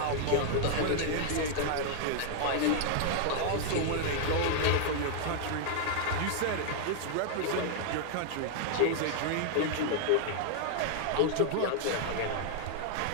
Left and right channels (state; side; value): different; both; correlation -0.01